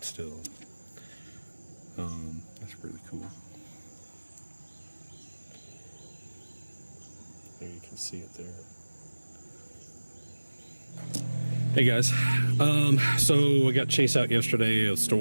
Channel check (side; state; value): both; inverted; correlation -1.00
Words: still. That's really cool. There you can see it there. Hey guys, so I got chased out yesterday of